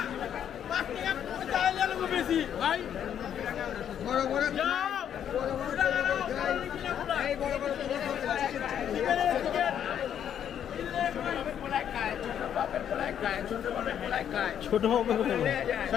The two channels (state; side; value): quieter; right; 9.3 dB